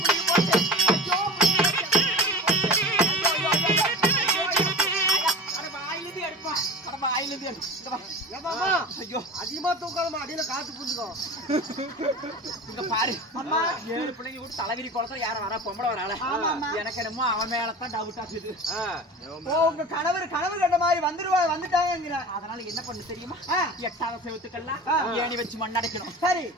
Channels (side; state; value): both; normal; correlation 0.33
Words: குடி போச்சு ஐயோ அதிகமா தூக்காம அடியில காத்து புரிஞ்சுக்கோ. இங்க பாரு அம்மா 7 பிள்ளைங்க கூட தலைவிரி குளத்துல யாரும் வரா பொம்பளை வரால. எனக்கு என்னமோ அவன் மேலதான் டவுட் ஆகுது. உங்க கணவர் கண்ட மாதிரி வந்துட்டாங்க. அதனால என்ன பண்ணு தெரியுமா? 8வது செவத்துக்கெல்லாம் ஏணி வச்சு மண்ணடைக்கணும். சரி